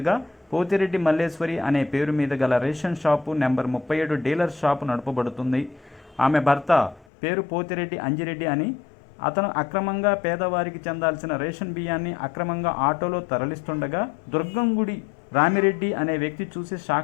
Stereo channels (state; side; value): drops out; right; at 7.1 s